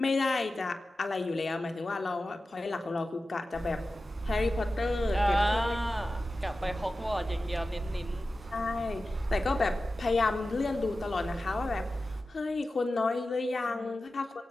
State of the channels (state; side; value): normal; both; correlation 0.94